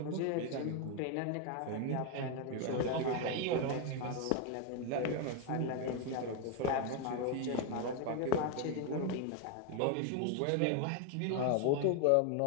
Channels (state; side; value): different; both; correlation 0.01